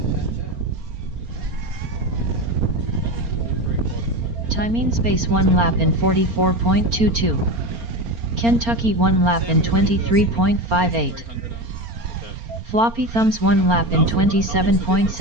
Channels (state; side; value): late; left; 4.3 ms